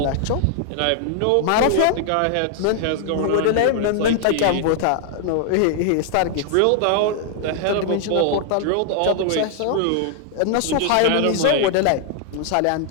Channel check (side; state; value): both; different; correlation 0.00